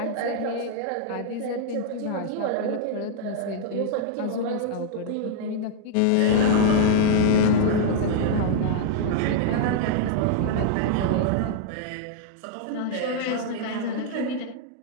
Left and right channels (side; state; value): both; different; correlation -0.01